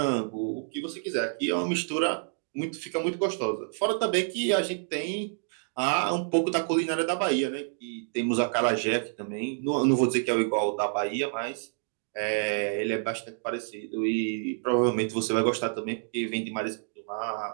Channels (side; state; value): left; silent; digital silence